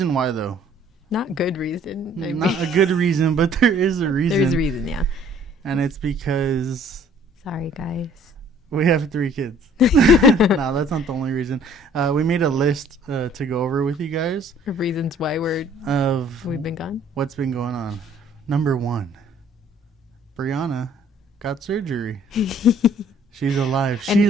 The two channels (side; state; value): both; normal; correlation 0.57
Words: why, though. Not good reason. Not a good reason, but there is a reason. There's a reason, yeah. And it's because... Sorry, guys. We have 3 kids. No, that's not the only reason. We made a list to go over with you guys. Of reasons why we've been gone? What's been going on. Number 1. Brianna got surgery. She's alive. She